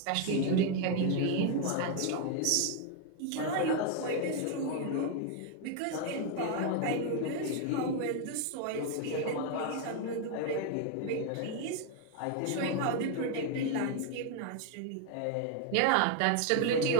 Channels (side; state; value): both; different; correlation 0.01